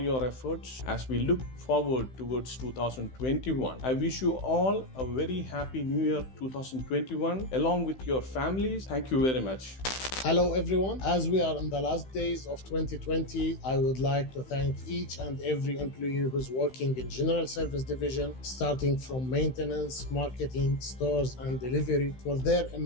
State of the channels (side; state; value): right; late; 16 ms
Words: efforts as we look forward towards 2021. I wish you all a very happy New Year 2021 along with your families. Thank you very much. Hello everyone. As we are in the last days of 2020, I would like to thank each and every employee who's working in General Service Division, starting from maintenance, marketing, stores and delivery, for their